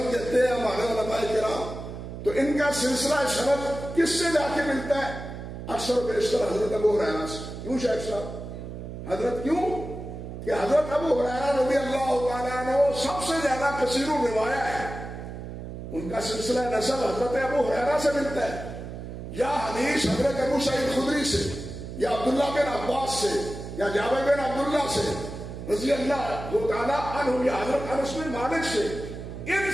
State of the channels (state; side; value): noise; right; hum, 9 dB below the sound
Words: دیتے ہیں ہمارے علماء کرام تو ان کا سلسلہ سند کس سے جا کے ملتا ہے؟ اکثر و بیشتر حضرت ابو ہریرہ سے۔ کیوں شیخ صاحب؟ حضرت کیوں کہ حضرت ابو ہریرہ رضی اللہ تعالیٰ عنہ سب سے زیادہ کثیر الروایہ ہے، ان کا سلسلہ نسب حضرت ابو ہریرہ سے ملتا ہے، یا حدیث حضرت ابو سعید خدری سے، یا عبداللہ بن عباس سے، یا جابر بن عبداللہ سے رضی اللہ تعالیٰ عنہ، یا حضرت انس بن مالک سے، ان